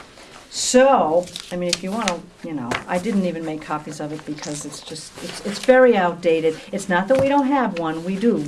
So, I mean, if you wanna, I didn't even make copies of it because it's very outdated. It's not that we don't have one, we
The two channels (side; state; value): both; identical; correlation 1.00